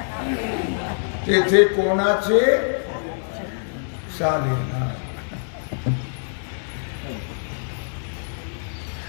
तेथे कोणाचे चालेना.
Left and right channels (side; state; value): right; silent; 63 dB below the other